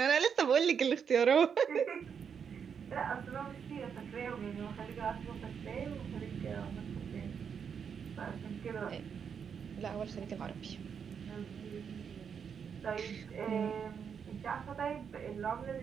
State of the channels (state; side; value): quieter; left; 7.0 dB